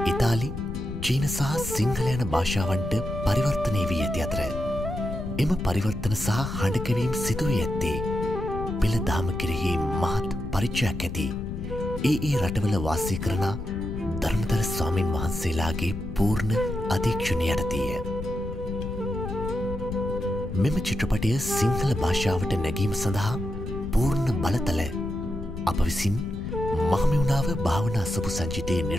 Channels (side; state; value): left; noise; rumble, 8 dB below the sound